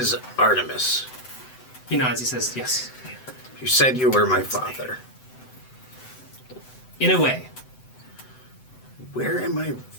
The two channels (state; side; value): late; right; 7.9 ms